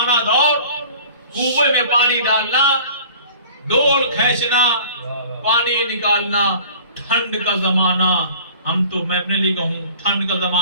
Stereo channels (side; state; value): both; inverted; correlation -0.46